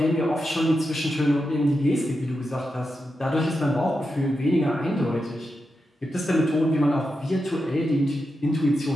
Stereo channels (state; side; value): normal; both; correlation 0.88